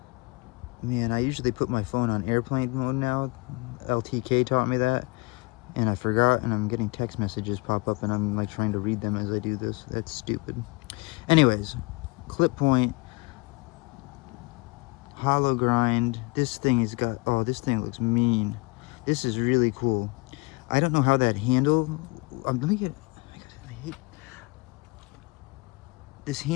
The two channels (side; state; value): right; quieter; 26.7 dB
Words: Man, I usually put my phone on airplane mode now. LTK taught me that, and I forgot, and I'm getting text messages pop up, and I'm like trying to read them as I do this. That's stupid. Anyways, clip point, hollow grind. This thing has got, oh, this thing looks mean. This is really cool. I don't know how that handle, let me get, I hate, this